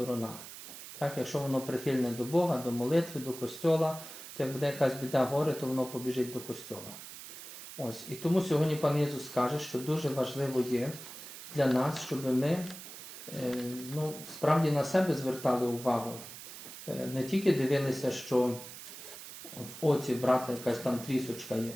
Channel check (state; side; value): noise; right; hiss, 13 dB below the sound